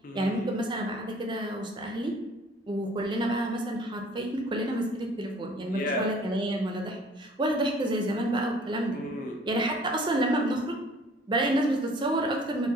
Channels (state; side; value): normal; both; correlation 0.53